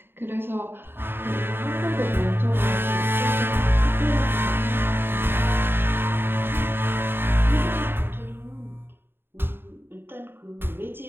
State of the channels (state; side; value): late; left; 0.11 ms